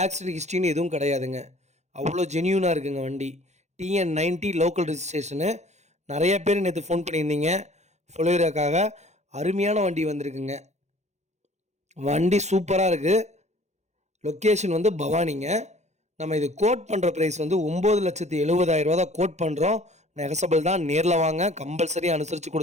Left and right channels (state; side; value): late; left; 0.33 ms